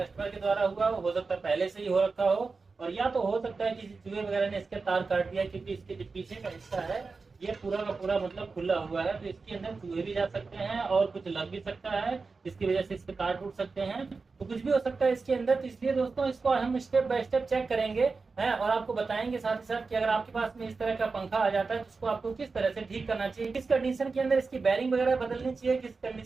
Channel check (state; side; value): quieter; left; 4.3 dB